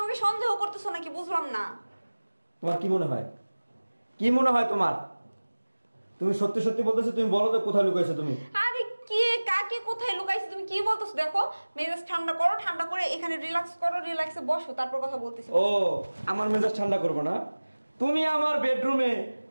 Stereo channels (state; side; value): inverted; both; correlation -1.00